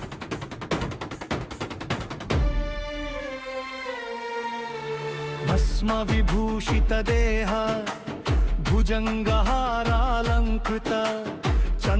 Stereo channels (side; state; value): both; identical; correlation 1.00